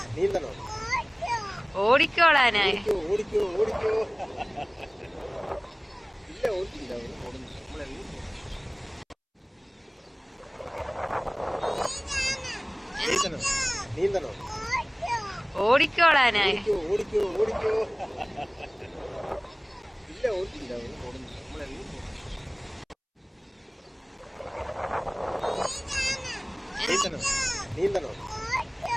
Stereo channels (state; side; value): identical; both; correlation 1.00